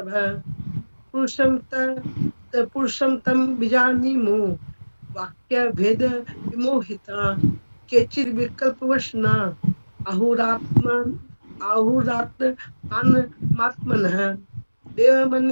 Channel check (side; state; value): both; inverted; correlation -1.00